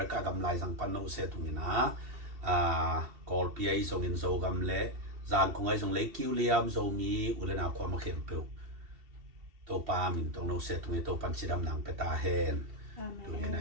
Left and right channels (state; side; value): late; left; 2.7 ms